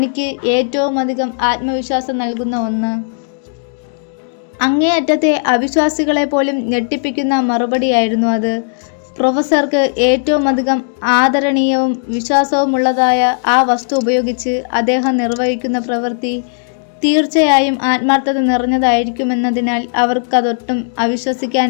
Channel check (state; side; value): silent; right; digital silence